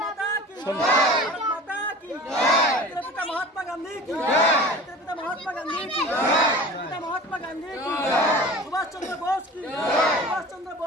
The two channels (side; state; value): both; normal; correlation 0.38